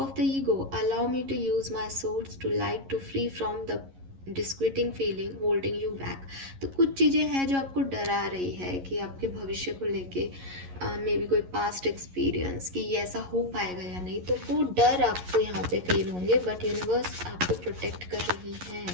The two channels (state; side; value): late; left; 11 ms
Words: the ego, allow me to use my source to light to free from the disquieting feeling holding you back. तो कुछ चीज़ें हैं जो आपको डरा रही है कि आपके भविष्य को लेके मे बी कोई पास्ट एक्सपीरियंस कि ये ऐसा हो पाएगा या नहीं, तो वो डर आपको यहाँ पे फील होंगे, बट यूनिवर्स आपको प्रोटेक्ट कर रही है।